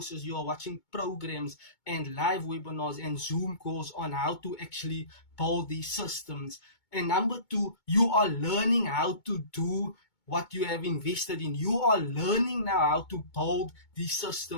you are watching programs and live webinars and Zoom calls on how to actually build these systems. And number two, you are learning how to do what you have invested in. You are learning now how to build these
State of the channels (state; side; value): late; right; 2.2 ms